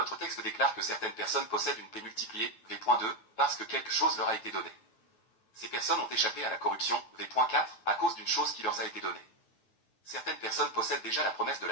texte déclare que certaines personnes possèdent une paix multipliée, V.2, parce que quelque chose leur a été donné. Ces personnes ont échappé à la corruption, V.4, à cause d'une chose qui leur a été donnée. Certaines personnes possèdent déjà la promesse de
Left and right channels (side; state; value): right; late; 9.3 ms